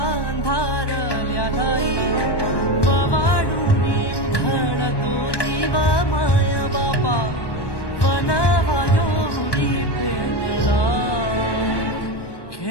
अंधारल्या ठाई पवाडूनी उधळतो जीवा माया बापा वनवायो उडी पेटला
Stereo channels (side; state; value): right; late; 1.2 ms